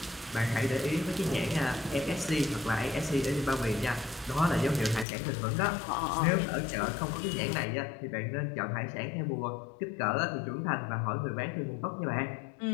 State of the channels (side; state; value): right; drops out; at 5.1 s